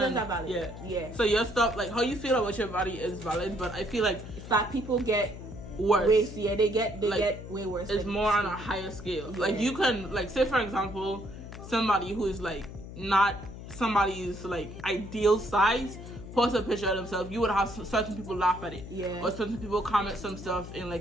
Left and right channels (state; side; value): noise; left; hum, 12 dB below the sound